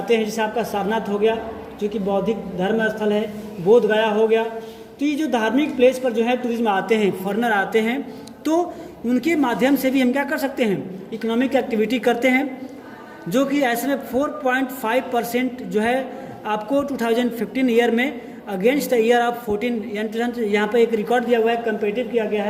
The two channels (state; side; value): identical; both; correlation 1.00